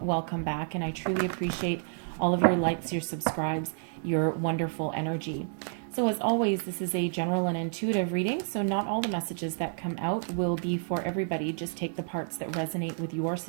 welcome back, and I truly appreciate all of your likes, your subscribes, your wonderful energy. So as always, this is a general and intuitive reading, so not all the messages that come out will be for everybody. Just take the parts that resonate with your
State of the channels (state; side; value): silent; left; digital silence